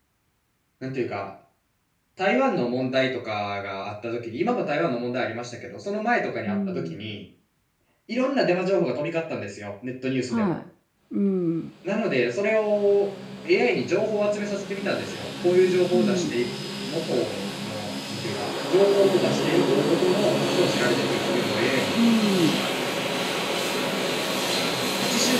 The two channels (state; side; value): identical; both; correlation 1.00